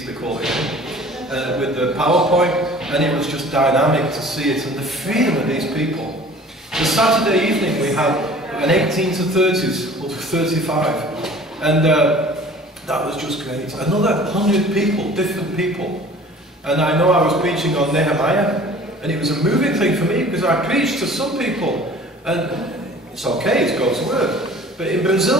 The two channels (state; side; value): normal; both; correlation 0.47